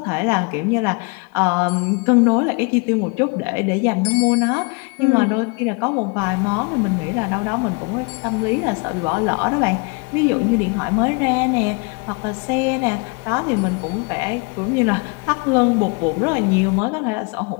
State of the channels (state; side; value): quieter; right; 31.7 dB